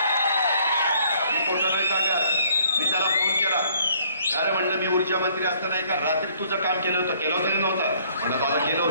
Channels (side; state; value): both; inverted; correlation -0.62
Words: मी त्याला फोन केला. अरे म्हणलं, मी ऊर्जा मंत्री असताना एका रात्री तुझं काम केलं होतं नव्हतं? म्हणलं दादा केलं